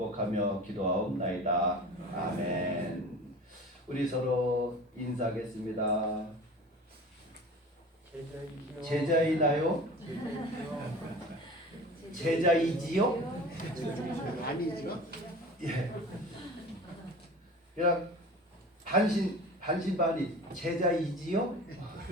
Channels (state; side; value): normal; both; correlation 0.38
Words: 기도하옵나이다. 아멘. 우리 서로 인사하겠습니다. 제자이나요? 제자이지요? 아니죠. 예. 그냥 반신반의 제자이지요?